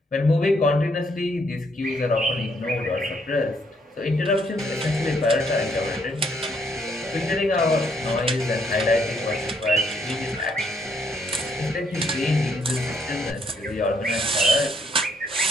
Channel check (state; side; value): normal; both; correlation 0.71